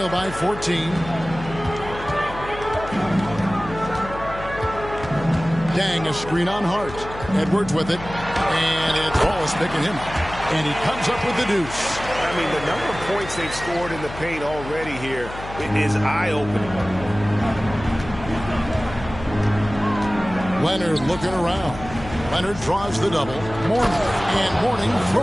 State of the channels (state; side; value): noise; left; hum, 12 dB below the sound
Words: by 14. Dang, a screen on Hart. Edwards with it, and it's Wallace picking him up. And he comes up with the deuce. I mean, the number of points they've scored in the paint already here, it is eye-opening. Leonard looking around. Leonard draws the double. Mourning, and Mourning